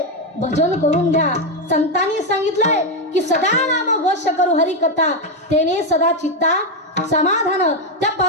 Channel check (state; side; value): normal; both; correlation 0.06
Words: भजन करून घ्या. संतांनी सांगितलंय की सदा नाम घोष करू हरी कथा तेने सदा चित्ता समाधान. त्या